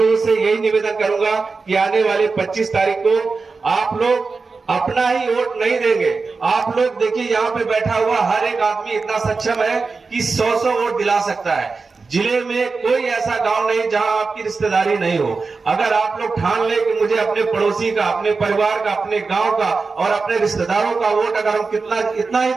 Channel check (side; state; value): left; quieter; 4.3 dB